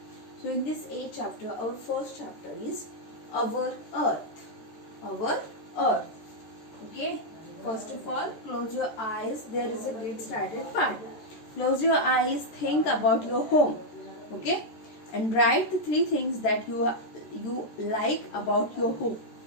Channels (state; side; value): late; right; 13 ms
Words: so in this 8 chapter, our first chapter is our Earth. Our Earth. Okay, first of all, close your eyes. There is a get started part. Close your eyes, think about your home. Okay, and write the 3 things that you like about your home.